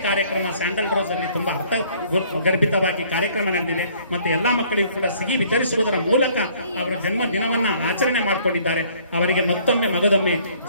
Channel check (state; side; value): inverted; both; correlation -0.59